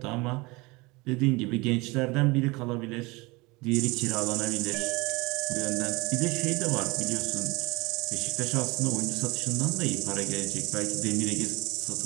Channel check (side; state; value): left; quieter; 24.3 dB